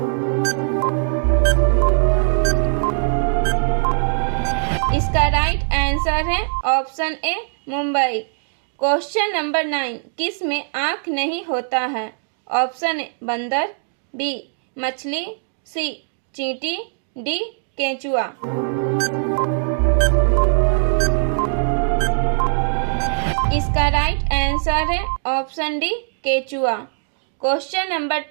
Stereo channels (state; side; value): silent; left; 65 dB below the other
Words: इसका राइट आंसर है option A Mumbai. Question number 9, किस में आँख नहीं होता है? ऑप्शन ए बंदर, बी मछली, सी चींटी, डी केंचुआ। इसका राइट आंसर है ऑप्शन डी केचुआ। क्वेश्चन नंबर